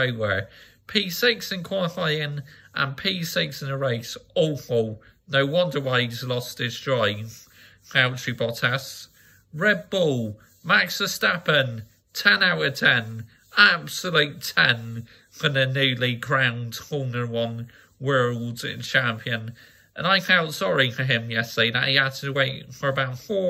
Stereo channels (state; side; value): identical; both; correlation 1.00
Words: P6 in qualifying and P6 in the race. Awful. No wonder why he's lost his drive. Valtteri Bottas. Red Bull. Max Verstappen. 10 out of 10. Absolute 10 for the newly crowned Formula 1 World Champion. And I felt sorry for him yesterday that he had to wait for about